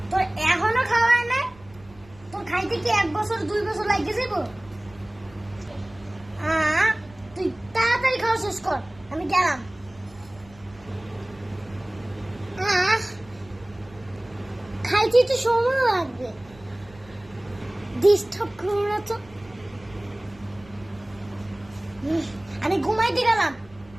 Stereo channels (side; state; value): right; noise; rumble, 24 dB below the sound